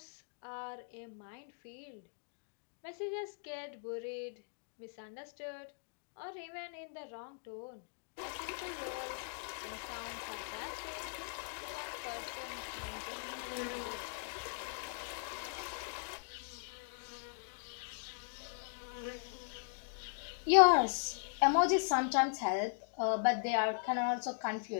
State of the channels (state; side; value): silent; right; digital silence